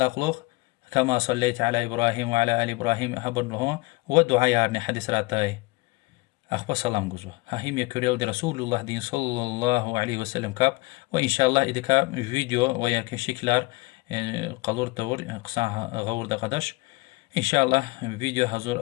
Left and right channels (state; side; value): quieter; right; 24.0 dB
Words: كما صليت على إبراهيم وعلى آل إبراهيم هبر لهون ودعاء يارني حديث راتاي أخبر سلام جزوه هاهم يكريل دي رسول الله دين صلى الله عليه وسلم كاب وإن شاء الله إذا كاب فيديو وياك شكلار قلور تور قصاها غور دقدش إن شاء الله فيديو